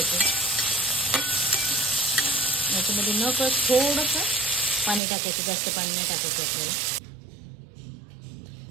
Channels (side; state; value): left; drops out; at 5.0 s